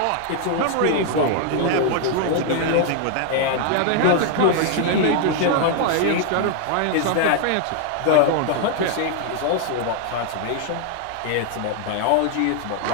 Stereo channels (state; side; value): different; both; correlation 0.00